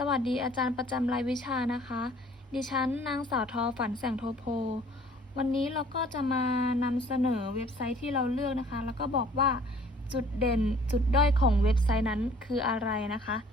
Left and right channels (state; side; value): normal; both; correlation 0.55